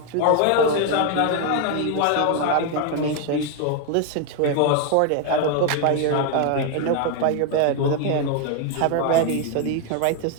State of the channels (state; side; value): different; both; correlation 0.01